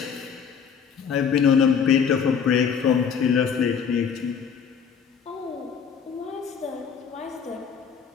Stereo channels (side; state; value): right; quieter; 6.9 dB